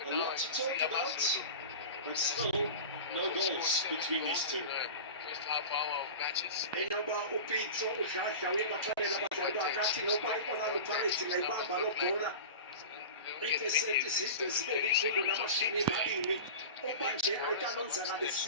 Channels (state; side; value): inverted; both; correlation -0.31